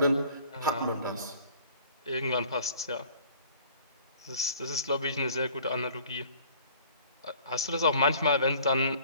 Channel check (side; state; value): both; inverted; correlation -0.52